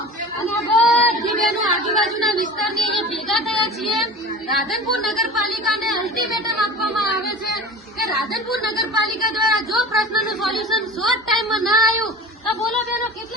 અને બધી બહેનો આજુબાજુના વિસ્તારની અહીંયા ભેગા થયા છીએ. રાધનપુર નગરપાલિકાને અલ્ટિમેટમ આપવામાં આવે છે કે રાધનપુર નગરપાલિકા દ્વારા જો પ્રશ્નનું સોલ્યુશન શોર્ટ ટાઈમમાં ના આવ્યું તો બોલો બહેનો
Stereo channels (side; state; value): both; normal; correlation 0.36